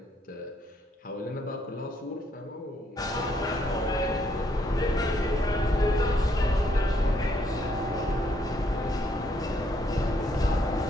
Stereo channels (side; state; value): both; normal; correlation 0.71